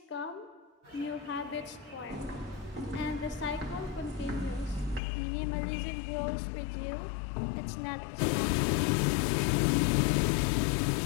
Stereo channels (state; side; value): drops out; right; at 5.0 s